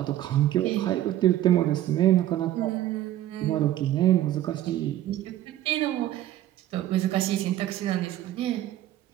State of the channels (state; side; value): quieter; left; 13.3 dB